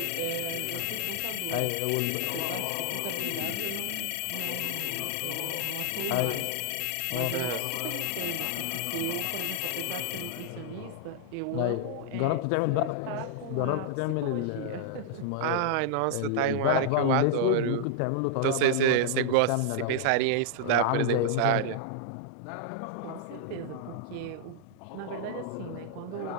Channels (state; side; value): different; both; correlation -0.01